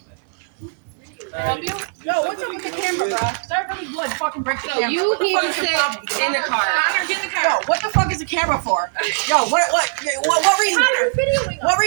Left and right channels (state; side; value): silent; left; digital silence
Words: Can I help you? No, what's up with the camera, bro? Start really blood, fucking break the camera. So you need to sit in the car. Connor, get in the car. Yo, what the fuck is the camera for? Yo, what reason? What